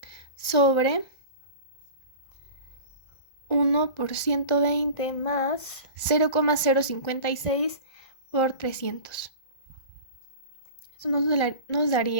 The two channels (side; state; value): right; late; 1.4 ms